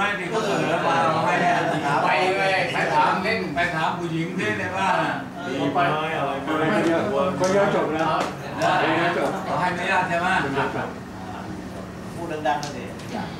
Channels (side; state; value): both; identical; correlation 1.00